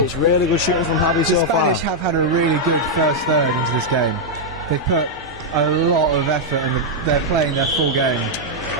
It's really good shooting from Javi The so far. Spanish have had a really good first third into this game. They've put a lot of effort and they're playing their full game.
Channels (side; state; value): both; normal; correlation -0.03